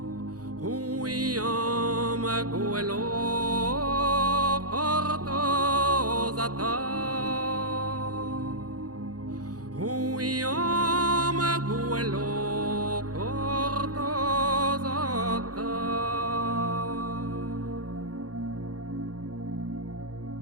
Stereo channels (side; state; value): left; late; 0.68 ms